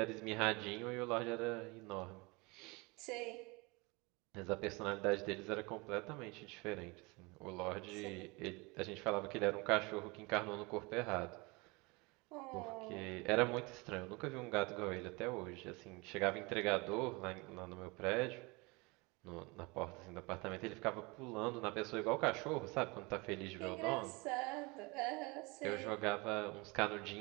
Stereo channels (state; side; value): quieter; left; 26.4 dB